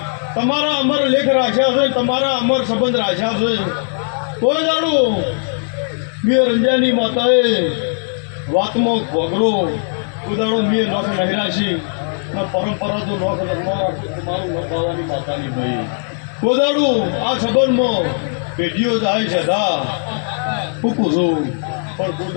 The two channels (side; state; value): right; silent; digital silence